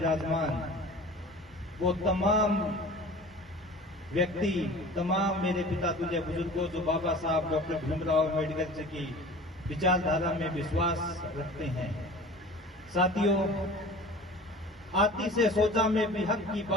वो तमाम व्यक्ति, तमाम मेरे पिता तुल्य बुजुर्गों जो बाबा साहब डॉक्टर भीमराव अम्बेडकर जी की विचारधारा में विश्वास रखते हैं। साथियों, आती से सोचा में भी हक की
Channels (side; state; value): both; normal; correlation 0.41